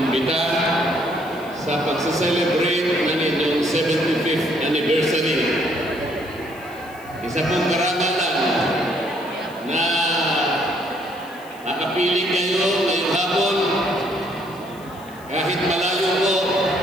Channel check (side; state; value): left; noise; hiss, 24 dB below the sound